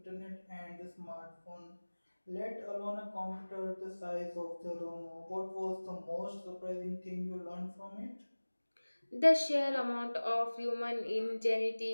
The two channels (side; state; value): both; inverted; correlation -1.00